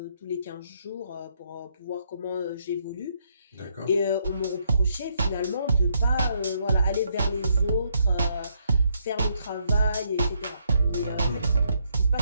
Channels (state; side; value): inverted; both; correlation -0.74